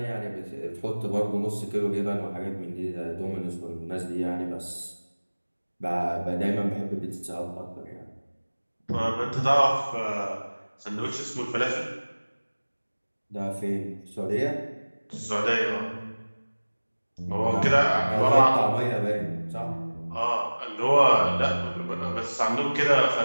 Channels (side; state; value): both; inverted; correlation -1.00